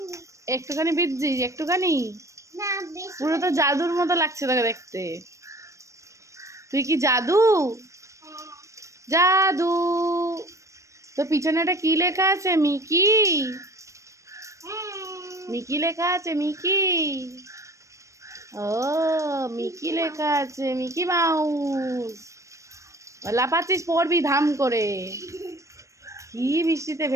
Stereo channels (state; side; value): late; left; 0.15 ms